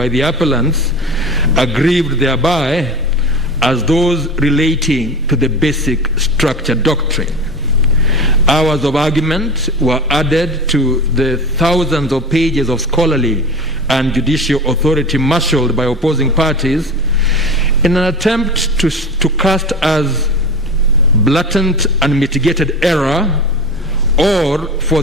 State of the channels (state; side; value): normal; both; correlation 0.30